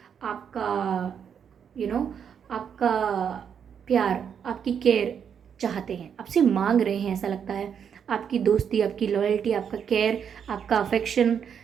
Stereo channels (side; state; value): left; quieter; 7.7 dB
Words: आपका आपका प्यार, आपकी केयर चाहते हैं, आपसे मांग रहे हैं, ऐसा लगता है। आपकी दोस्ती, आपकी लॉयल्टी, आपका केयर, आपका अफेक्शन,